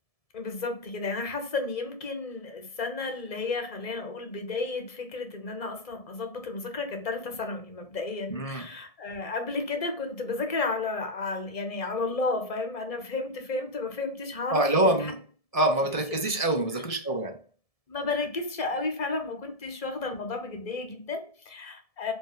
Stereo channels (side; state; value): right; late; 1.7 ms